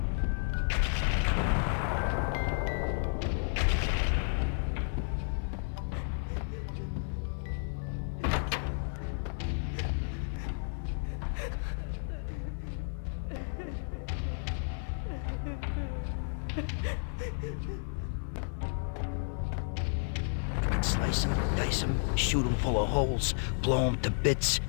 Slice them, dice them, shoot them full of holes, blow them to bits,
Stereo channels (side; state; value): right; silent; digital silence